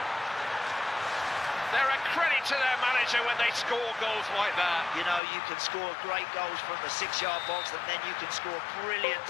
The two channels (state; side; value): drops out; right; at 5.2 s